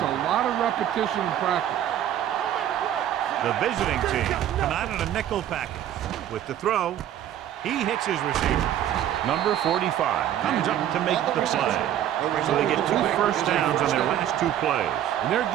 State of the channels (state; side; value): quieter; left; 11.2 dB